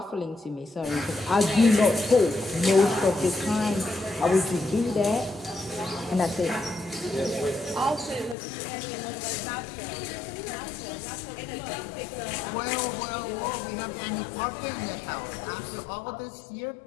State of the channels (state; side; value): drops out; right; at 8.3 s